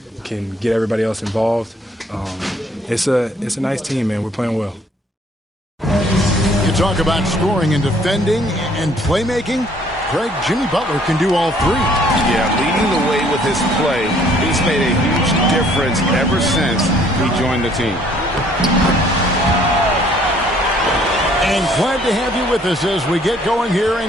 can get everybody else involved. It's a nice team, man. We're playing well. You talk about scoring and defending and playmaking. Greg, Jimmy Butler can do all three. Yeah, leading the way with his play. He's made a huge difference ever since he joined the team. And glad to have you with us as we get going here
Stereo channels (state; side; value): normal; both; correlation 0.61